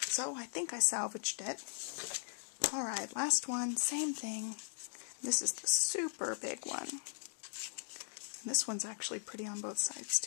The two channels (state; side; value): silent; right; digital silence